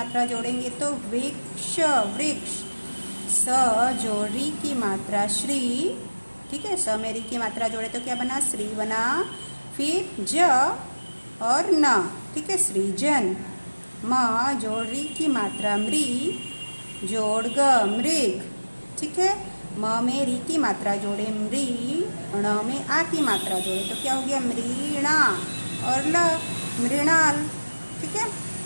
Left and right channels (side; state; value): both; inverted; correlation -1.00